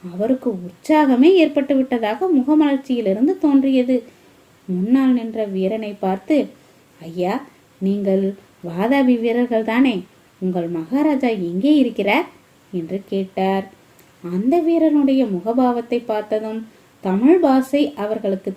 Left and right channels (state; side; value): identical; both; correlation 1.00